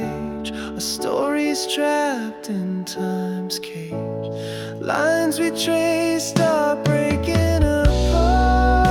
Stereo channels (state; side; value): identical; both; correlation 1.00